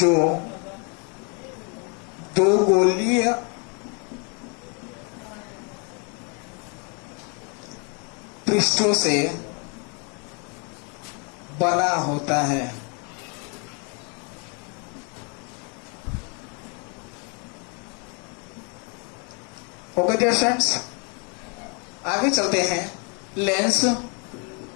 दो गोलीय पृष्ठों से बना होता है। ओके डियर फ्रेंड्स, आगे चलते हैं। लेंस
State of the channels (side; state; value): right; quieter; 35.4 dB